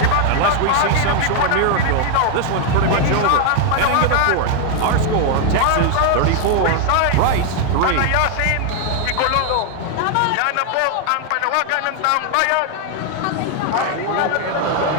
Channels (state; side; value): different; both; correlation 0.00